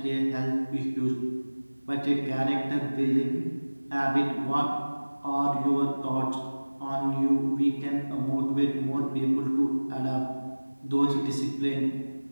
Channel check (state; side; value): inverted; both; correlation -1.00